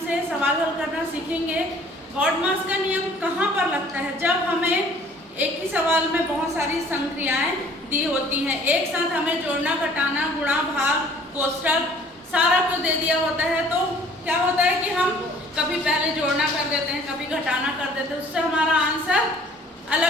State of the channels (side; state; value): both; normal; correlation 0.54